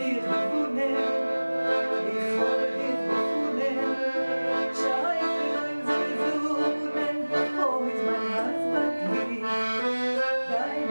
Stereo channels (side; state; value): both; inverted; correlation -1.00